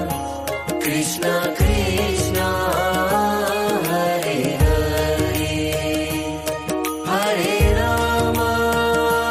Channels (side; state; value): both; identical; correlation 1.00